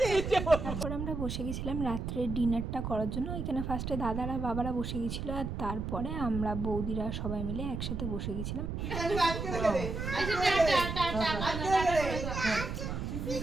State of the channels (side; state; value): right; noise; rumble, 4 dB below the sound